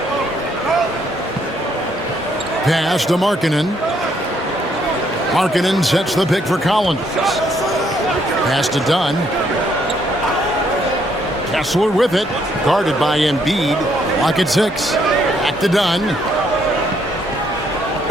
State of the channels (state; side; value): normal; both; correlation 0.70